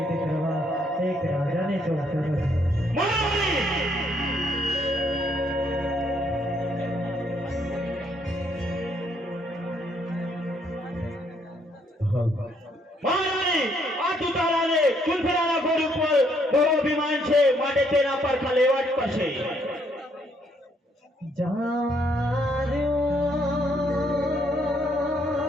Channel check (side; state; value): both; normal; correlation 0.70